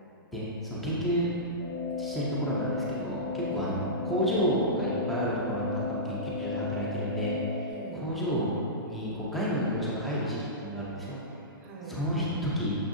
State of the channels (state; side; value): normal; both; correlation -0.18